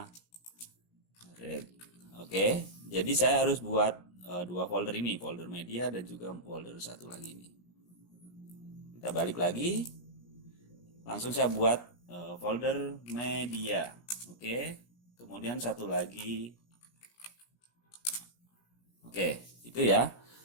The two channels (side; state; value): right; late; 17 ms